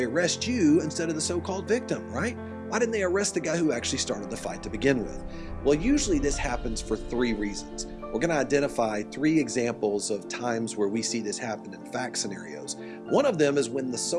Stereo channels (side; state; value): both; identical; correlation 1.00